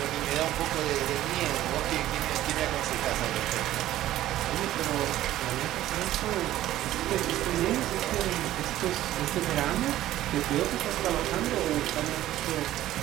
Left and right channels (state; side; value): quieter; left; 14.0 dB